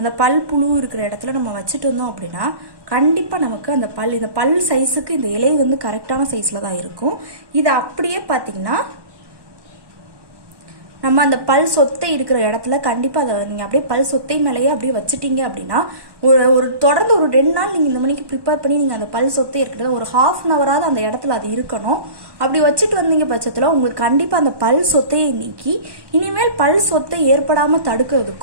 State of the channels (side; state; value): left; late; 1.1 ms